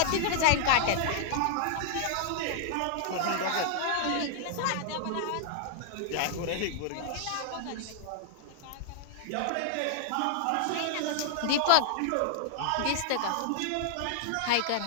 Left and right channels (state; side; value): different; both; correlation -0.01